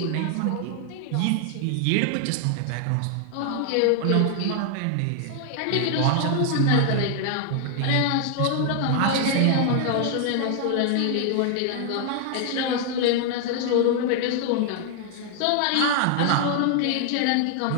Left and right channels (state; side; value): different; both; correlation 0.00